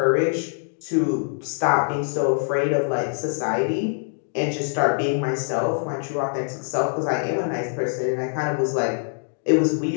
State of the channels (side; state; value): right; silent; 62 dB below the other